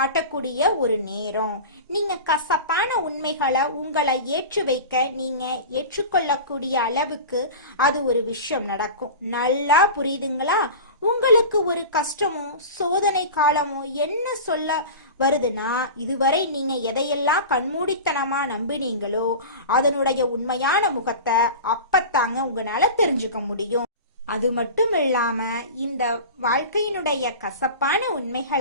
ஒரு நேரம். நீங்க கசப்பான உண்மைகளை உங்களை ஏற்று வைக்க நீங்க ஏற்றுக்கொள்ளக்கூடிய அளவுக்கு அது ஒரு விஷயம் நடக்கும். நல்லா புரியுதுங்களா? உங்களுக்கு ஒரு கஷ்டமோ சோதனை காலமோ என்ன சொல்ல வருதுன்னா, இதுவரை நீங்க எதையெல்லாம் கண்மூடித்தனமா நம்பினீங்களோ அதனுடைய உண்மையான முகத்தை அப்பத்தாங்க உங்களால தெரிஞ்சுக்க முடியும். அது மட்டும் இல்லாம இந்த வாழ்க்கையினுடைய கசப்பான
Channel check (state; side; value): inverted; both; correlation -0.32